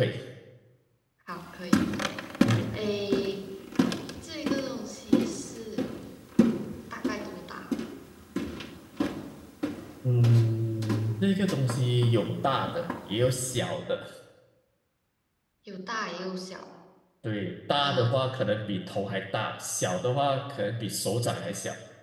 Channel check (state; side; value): identical; both; correlation 1.00